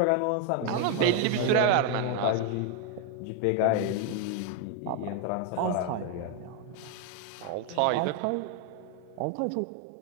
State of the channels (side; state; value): both; different; correlation 0.01